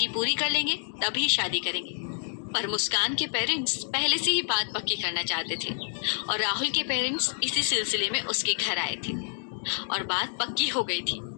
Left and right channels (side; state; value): right; silent; digital silence